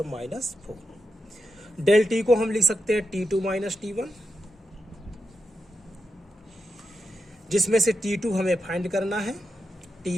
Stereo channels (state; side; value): normal; both; correlation 0.86